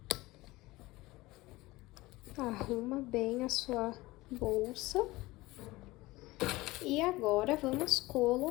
Arruma bem a sua bolsa. E agora vamos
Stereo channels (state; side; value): quieter; right; 19.9 dB